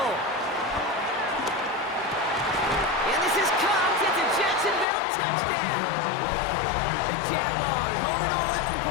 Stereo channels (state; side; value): drops out; right; at 4.9 s